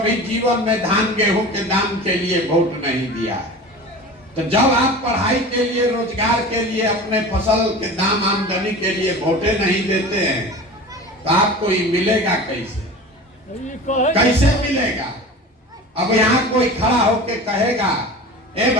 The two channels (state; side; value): normal; both; correlation 0.35